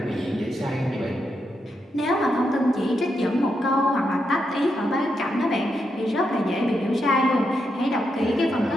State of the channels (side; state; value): both; normal; correlation 0.83